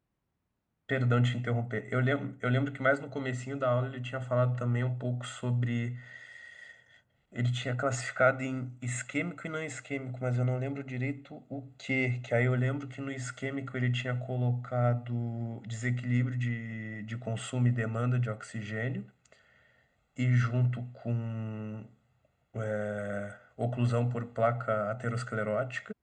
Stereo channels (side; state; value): both; identical; correlation 1.00